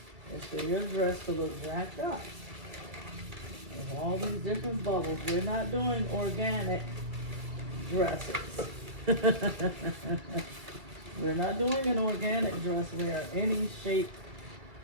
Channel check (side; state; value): left; late; 2.2 ms